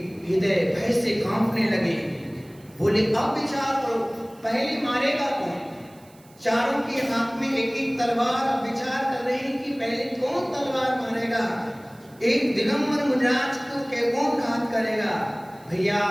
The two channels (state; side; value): noise; right; hiss, 28 dB below the sound